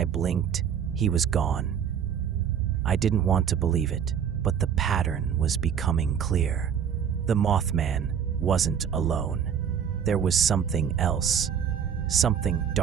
blinked, he was gone. I didn't want to believe it, but the pattern was becoming clear. The Mothman wasn't alone. There was something else, something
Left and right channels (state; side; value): quieter; left; 8.1 dB